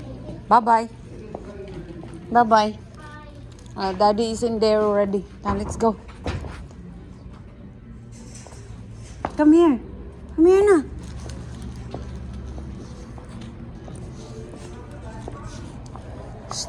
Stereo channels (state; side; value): identical; both; correlation 1.00